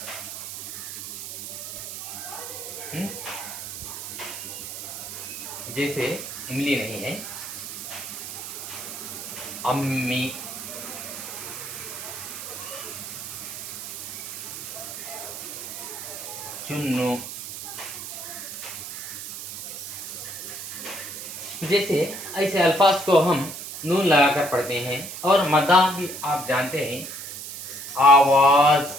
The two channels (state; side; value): noise; right; hiss, 8 dB below the sound